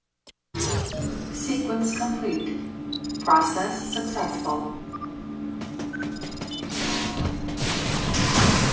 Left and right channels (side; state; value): both; identical; correlation 1.00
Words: Sequence complete. Process successful.